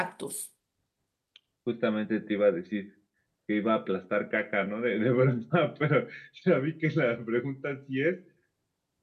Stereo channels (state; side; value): identical; both; correlation 1.00